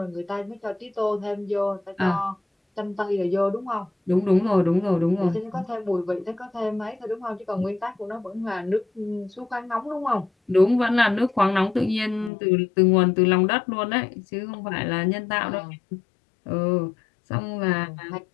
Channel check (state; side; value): drops out; right; at 12.3 s